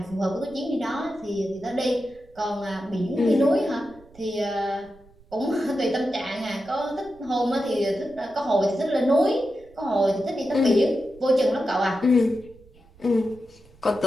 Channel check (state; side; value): noise; right; rumble, 26 dB below the sound